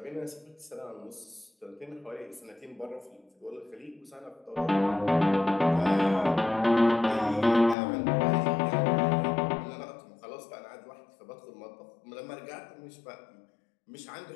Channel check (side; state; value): right; drops out; at 7.8 s